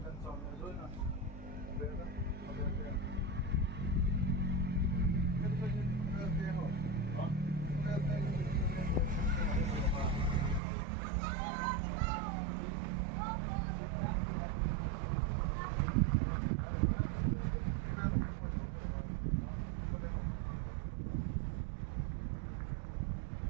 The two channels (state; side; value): drops out; left; at 10.6 s